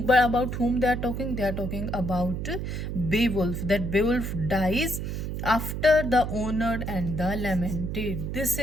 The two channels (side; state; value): right; noise; hum, 4 dB below the sound